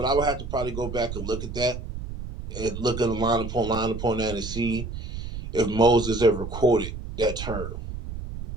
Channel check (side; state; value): right; noise; rumble, 8 dB below the sound